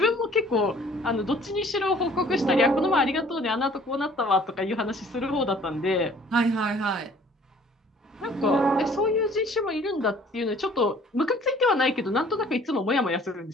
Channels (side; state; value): both; normal; correlation 0.54